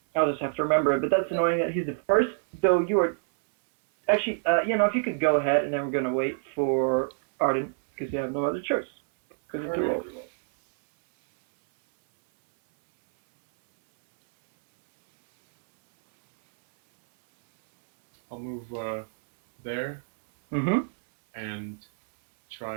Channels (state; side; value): silent; left; 61 dB below the other